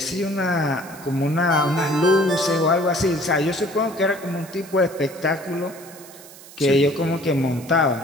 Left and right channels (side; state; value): right; noise; hiss, 19 dB below the sound